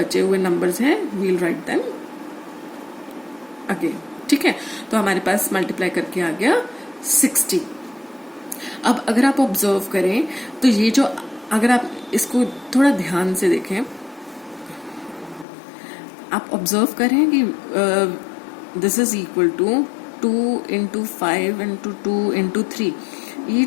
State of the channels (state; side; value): drops out; right; at 15.5 s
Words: हुए नंबर्स हैं वील राइट देम अगेन, ठीक है। तो हमारे पास मल्टीप्लाई करके आ गया 60। अब अगर आप ऑब्जर्व करें तो ये जो, अगर आप इसको थोड़ा ध्यान से देखें, आप ऑब्जर्व करें कि this is equal to 2 into 5 into 2 into 3। ये